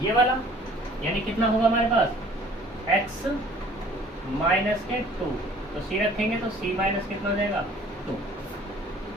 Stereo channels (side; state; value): both; normal; correlation 0.53